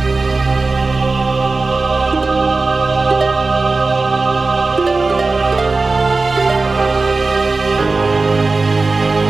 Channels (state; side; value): quieter; left; 3.7 dB